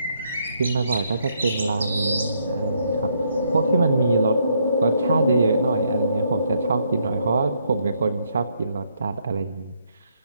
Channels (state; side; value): inverted; both; correlation -0.73